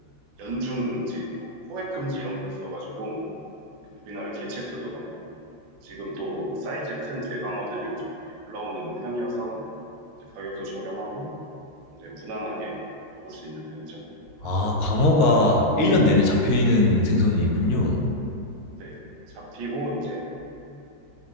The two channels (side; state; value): left; late; 13 ms